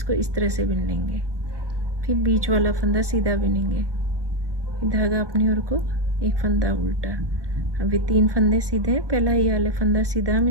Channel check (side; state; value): left; late; 1.2 ms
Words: इस तरह से बिन लेंगे, फिर बीच वाला फंदा सीधा बिनेंगे, फिर धागा अपनी ओर को, एक फंदा उल्टा। अब ये तीन फंदे सीधे हैं, पहला ये वाला फंदा सीधा हम